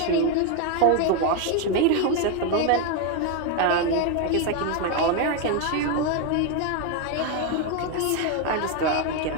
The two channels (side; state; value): both; different; correlation 0.01